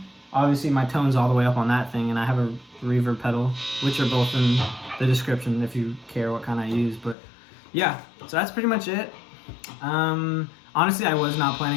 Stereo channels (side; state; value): right; drops out; at 7.2 s